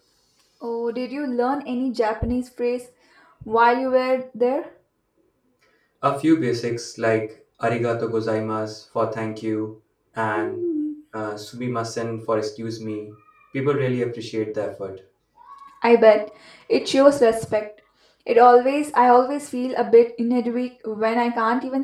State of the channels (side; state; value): both; identical; correlation 1.00